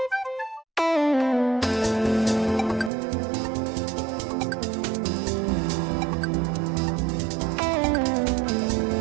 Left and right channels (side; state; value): left; drops out; at 2.9 s